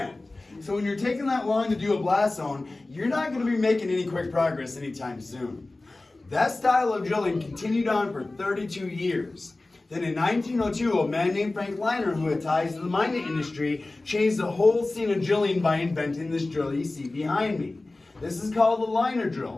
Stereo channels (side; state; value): right; quieter; 3.0 dB